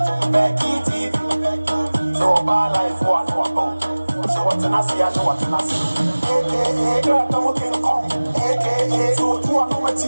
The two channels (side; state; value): both; inverted; correlation -1.00